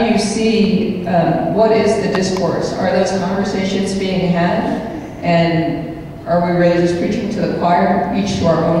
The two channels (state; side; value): identical; both; correlation 1.00